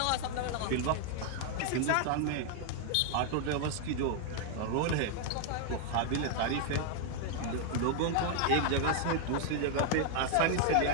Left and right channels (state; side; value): different; both; correlation 0.00